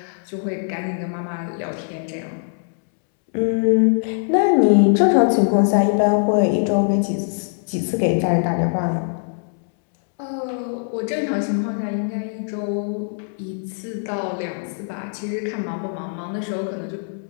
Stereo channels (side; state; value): right; silent; 64 dB below the other